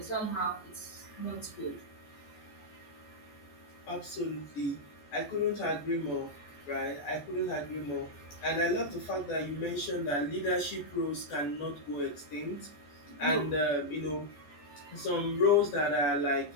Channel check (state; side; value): late; right; 14 ms